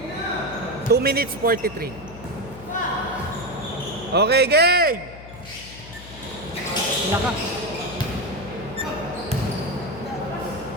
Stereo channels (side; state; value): left; noise; hum, 16 dB below the sound